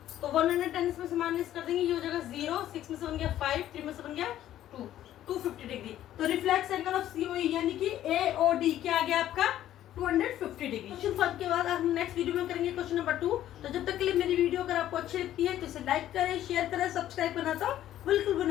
तो 110 इसमें से माइनस कर देंगे, ये हो जाएगा 0, 6 में से बन गया 5, 3 में से बन गया 2, 250 डिग्री। तो रिफ्लेक्स एंगल ऑफ COE यानी कि AOD क्या आ गया आपका 250 डिग्री। क्वेश्चन 5 के बाद हम नेक्स्ट वीडियो में करेंगे क्वेश्चन नंबर 2। तो जब तक के लिए मेरी वीडियो अगर आपको अच्छी लगती है तो इसे लाइक करें, शेयर करें, सब्सक्राइब करना तो बिल्कुल भी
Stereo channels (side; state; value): right; quieter; 12.5 dB